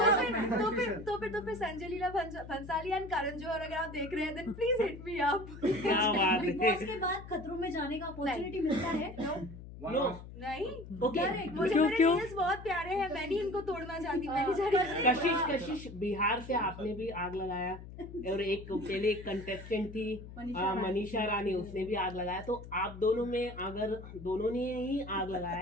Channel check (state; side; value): noise; left; hum, 14 dB below the sound